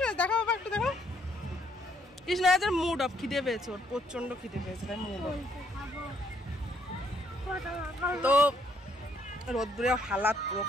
দেখো বাবা, একটু দেখো। কৃষ্ণরাজের মুড অফ, খিদে পেয়েছে ওর, প্রচন্ড খিদে পেয়েছে, তাই মুড অফ। তো রোদ্দুরে হালাত পুরো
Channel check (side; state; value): both; normal; correlation 0.69